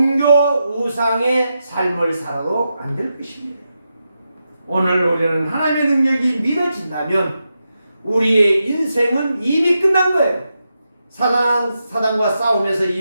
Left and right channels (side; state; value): both; inverted; correlation -0.87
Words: 우상의 삶을 살아도 안 될 것입니다. 오늘 우리는 하나님의 능력이 믿어진다면 우리의 인생은 이미 끝난 거예요. 사단과 싸우면서